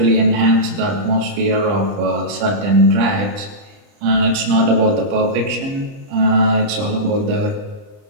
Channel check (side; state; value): left; late; 30 ms